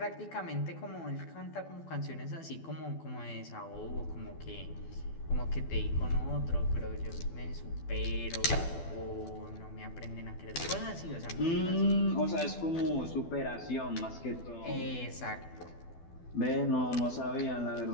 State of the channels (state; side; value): late; right; 12 ms